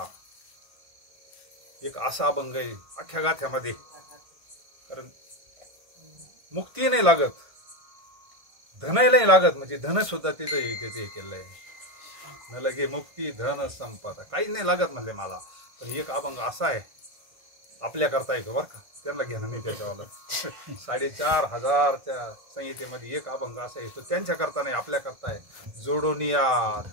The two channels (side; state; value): left; late; 1.5 ms